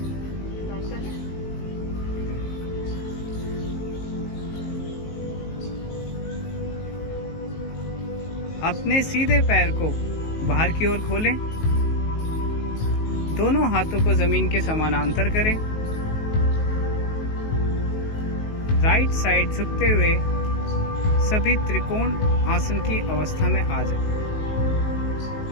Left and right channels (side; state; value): right; late; 19 ms